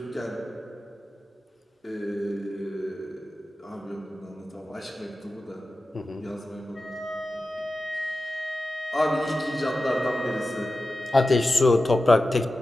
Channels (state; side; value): normal; both; correlation 0.93